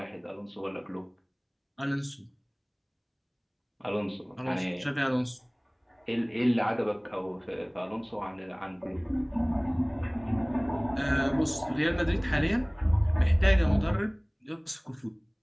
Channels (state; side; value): identical; both; correlation 1.00